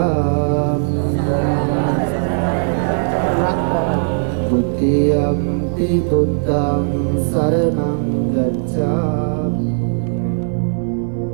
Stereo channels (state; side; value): silent; left; 56 dB below the other